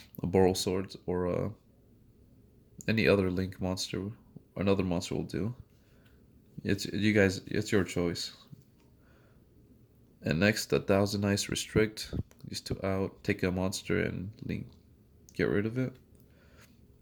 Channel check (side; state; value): both; identical; correlation 1.00